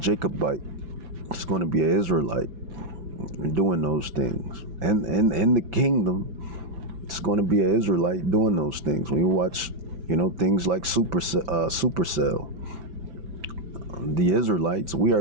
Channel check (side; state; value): left; late; 5.9 ms